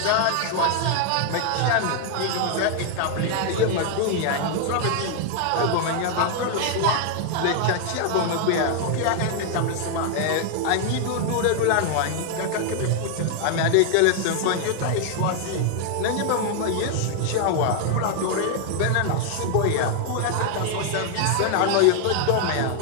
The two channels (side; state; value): both; different; correlation 0.00